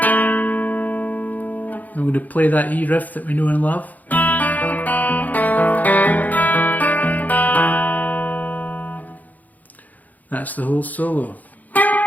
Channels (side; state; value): right; late; 0.080 ms